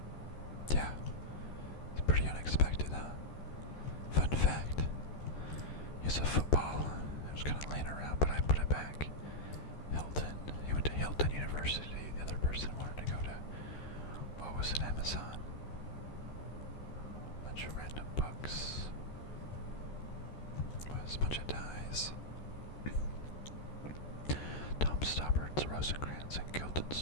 Yeah, it's pretty unexpected, huh? Fun fact, here's a football. It was kind of laying around, but I put it back. Hilton. He went to Hilton University. The other person wanted to go to, what was it, Amazon? Bunch of random books. Was a bunch of ties. Tom Stoppart's Rosencrantz and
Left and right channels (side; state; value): right; late; 13 ms